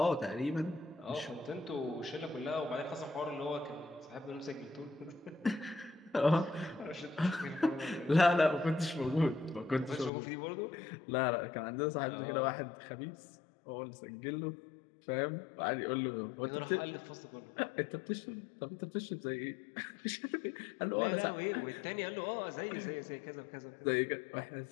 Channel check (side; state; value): right; drops out; at 10.1 s